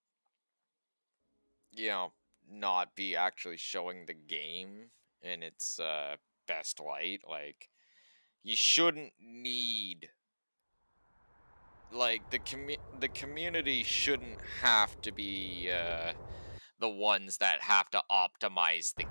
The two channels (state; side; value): inverted; both; correlation -1.00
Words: you know, not be actually showing the game in its best light. Like, you shouldn't need, like, the community shouldn't have to be the ones that have to optimize the